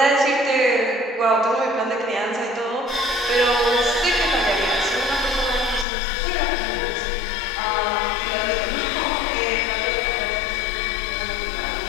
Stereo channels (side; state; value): right; drops out; at 5.9 s